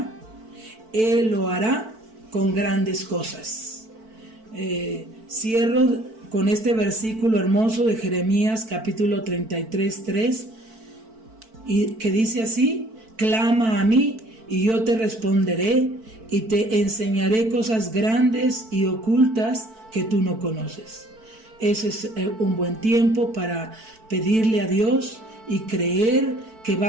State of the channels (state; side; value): late; left; 4.5 ms